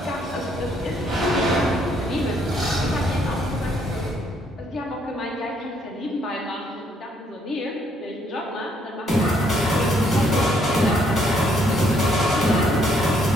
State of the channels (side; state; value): both; normal; correlation 0.69